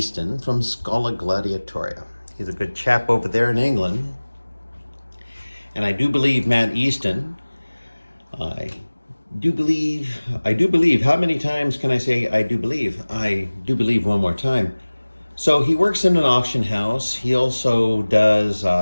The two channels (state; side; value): inverted; both; correlation -1.00